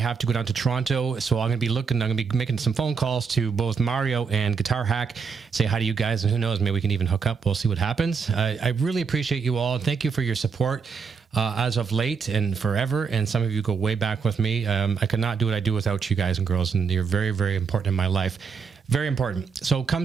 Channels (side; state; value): left; quieter; 5.7 dB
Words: to go down to Toronto, so I'm going to be making some phone calls to both Mario and Guitar Hack, say hi to you guys, and who knows, maybe we can even hook up. We'll see what happens. I really appreciate you all. Thank you for your support as of late and forever, and some of you go way back with me. I could not do what I do without you guys and girls, and you're very, very important in my life. Very important. So